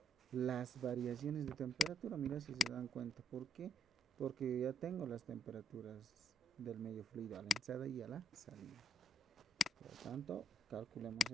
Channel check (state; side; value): normal; both; correlation 0.71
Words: Las variaciones de temperatura. Mira, si se dan cuenta. ¿Por qué? Porque ya tengo las temperaturas del medio fluido a la entrada y a la salida. Por lo tanto, calculemos